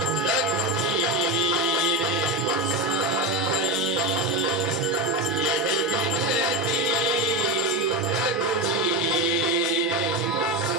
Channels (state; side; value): normal; both; correlation 0.17